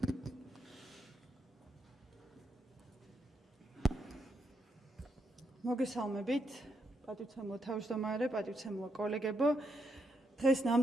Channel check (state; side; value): normal; both; correlation 0.79